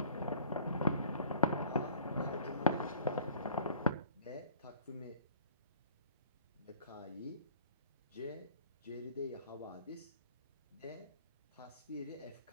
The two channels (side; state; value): both; inverted; correlation -0.53